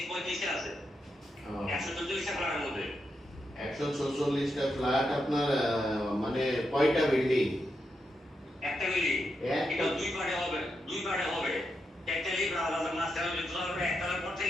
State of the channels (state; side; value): normal; both; correlation 0.84